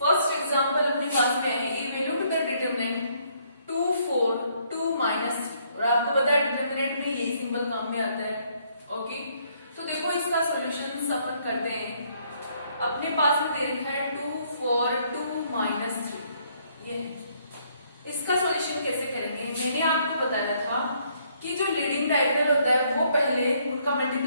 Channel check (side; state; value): both; inverted; correlation -0.68